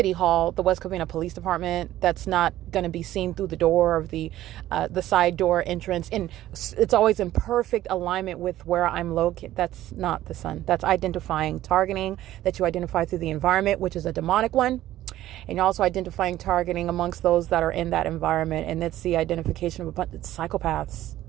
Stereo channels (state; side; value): quieter; left; 14.1 dB